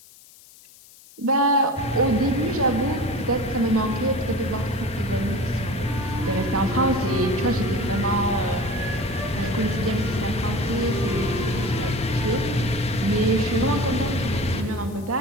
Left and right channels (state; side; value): noise; left; hiss, 23 dB below the sound